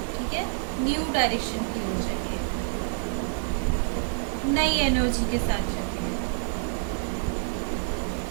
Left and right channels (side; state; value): left; silent; digital silence